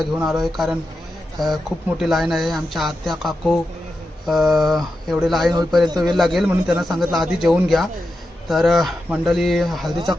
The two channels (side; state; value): both; normal; correlation 0.89